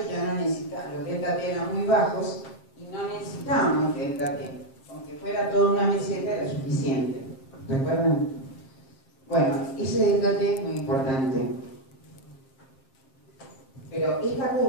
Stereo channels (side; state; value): right; late; 7.5 ms